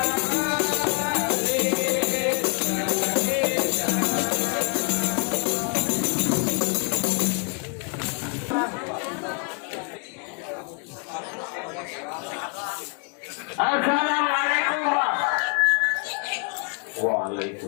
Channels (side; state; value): right; quieter; 36.5 dB